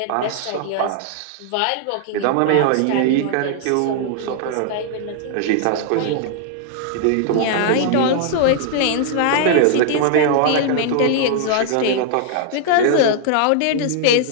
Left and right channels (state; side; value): different; both; correlation 0.00